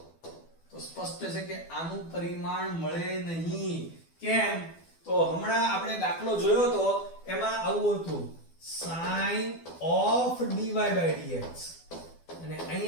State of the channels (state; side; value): late; right; 12 ms